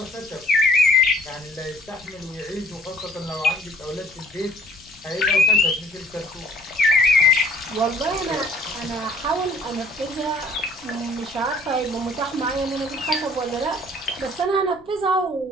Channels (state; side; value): noise; left; rumble, 28 dB below the sound